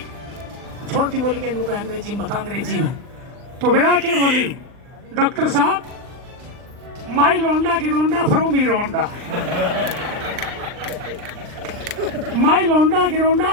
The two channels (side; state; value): left; late; 39 ms